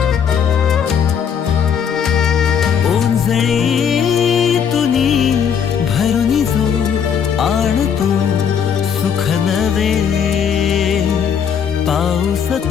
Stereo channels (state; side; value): quieter; right; 7.5 dB